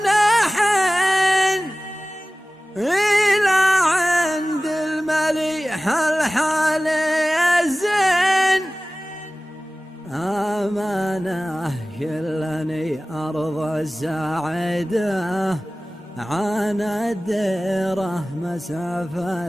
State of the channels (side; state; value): both; normal; correlation 0.97